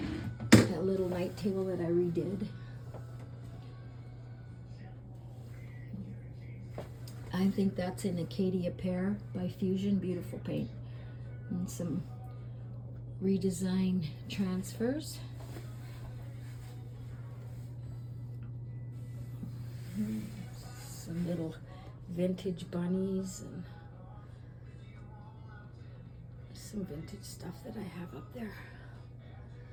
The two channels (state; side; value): identical; both; correlation 1.00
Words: little night table that I redid. I think that's an Acadia Pear by Fusion. Beautiful paint. And some redesign transfers. Some little vintage bunnies and some vintage stuff that I have up there.